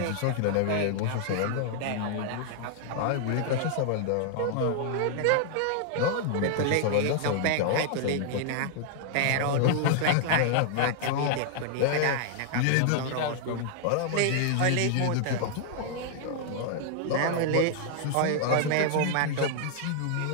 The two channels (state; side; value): different; both; correlation -0.01